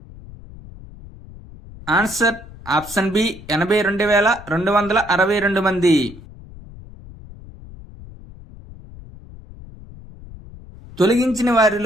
ఆన్సర్ ఆప్షన్ బి, 82,262 మంది. తొలగించిన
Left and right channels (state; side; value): noise; left; rumble, 18 dB below the sound